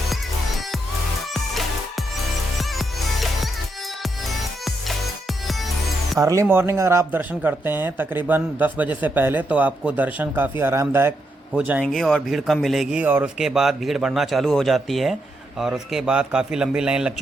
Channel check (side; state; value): both; normal; correlation 0.81